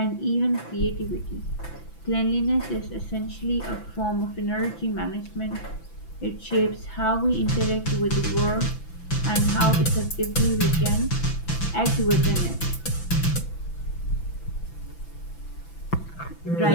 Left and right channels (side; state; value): right; late; 6.0 ms